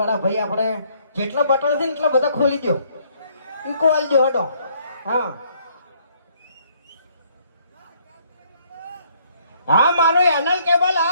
ભાઈ આપણે જેટલા બટન છે ને એટલા બધા ખોલી દો. ઈકો આલી દો હટો. હા હા મારો એનલ કેબલ.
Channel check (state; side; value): inverted; both; correlation -0.65